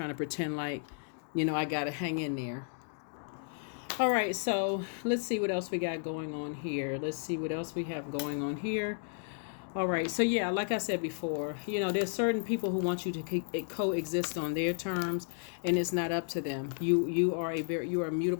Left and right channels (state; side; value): silent; right; 56 dB below the other